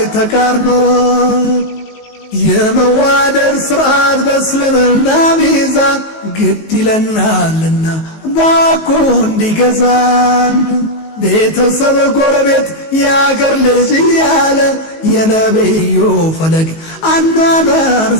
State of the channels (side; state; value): right; late; 19 ms